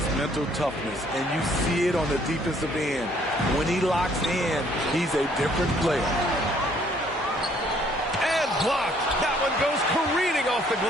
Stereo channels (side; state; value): both; normal; correlation 0.63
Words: mental toughness, and you see it on the defensive end. When he locks in, he's a different player. And blocked. That one goes careening off the